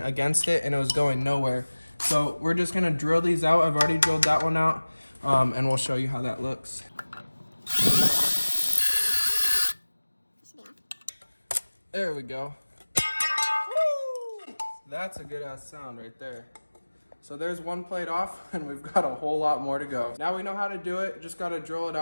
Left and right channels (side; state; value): both; inverted; correlation -1.00